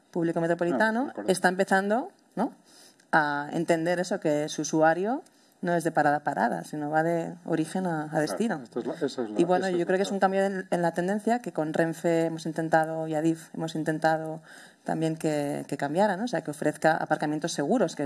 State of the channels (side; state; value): both; identical; correlation 1.00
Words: público metropolitano, está empezando, ¿no?, a entender eso, que su usuario no es de parada a parada, sino va de origen a destino. Y bueno, yo creo que es un cambio en la tendencia que con Renfe hemos intentado, y Adif hemos intentado también que cambiara, ¿no? O sea, que ofrezca aparcamientos seguros,